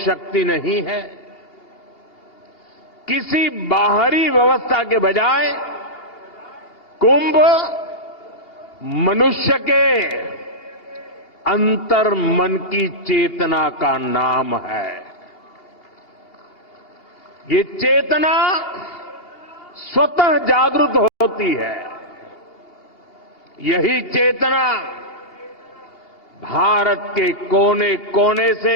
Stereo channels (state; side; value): late; right; 3.0 ms